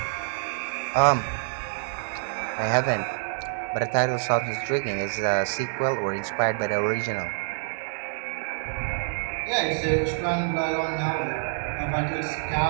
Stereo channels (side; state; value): left; silent; 60 dB below the other